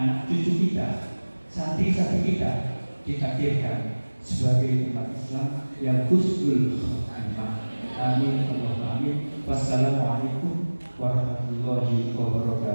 cucu kita, santri-santri kita ditakdirkan sebagai umat Islam yang husnul khotimah. Amin. Allahumma amin. Wassalamualaikum warahmatullahi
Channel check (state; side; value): inverted; both; correlation -1.00